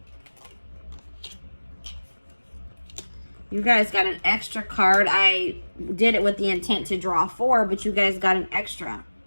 you guys got an extra card. I did it with the intent to draw 4, but you guys got an extra.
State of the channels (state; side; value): inverted; both; correlation -1.00